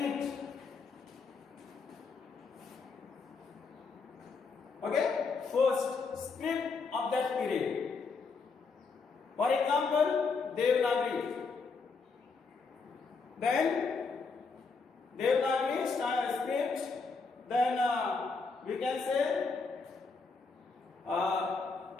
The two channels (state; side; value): quieter; right; 4.6 dB